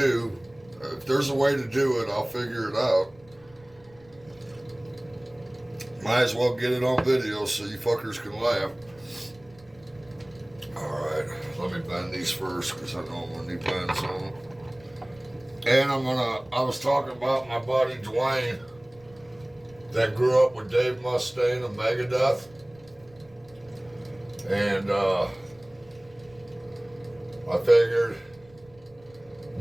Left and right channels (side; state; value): right; noise; rumble, 27 dB below the sound